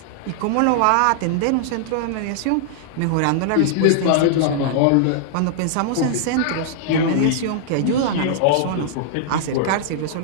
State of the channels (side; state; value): both; different; correlation -0.01